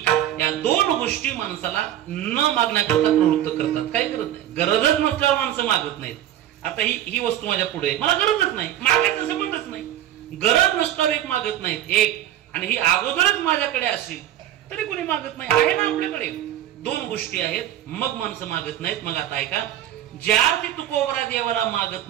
या दोन गोष्टी माणसाला न मागण्याकरता प्रवृत्त करतात. काय करत नाही. गरजच नसल्यावर माणसं मागत नाहीत. आता ही वस्तू माझ्या पुढे, मला गरजच नाही, मागायचं संबंधच नाही. गरज नसल्यावर एक मागत नाहीत एक, आणि ही अगोदरच माझ्याकडे असेल तरी कोणी मागत नाही. आहे ना आपल्याकडे. दोन गोष्टी आहेत मग माणसं मागत नाहीत. मग आता ऐका, ज्या ते तुकोबरा देवाला मागत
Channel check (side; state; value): left; quieter; 12.1 dB